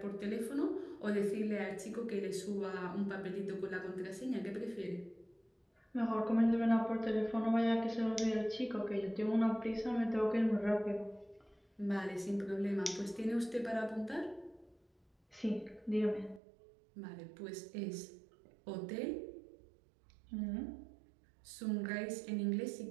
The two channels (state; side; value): drops out; left; at 16.4 s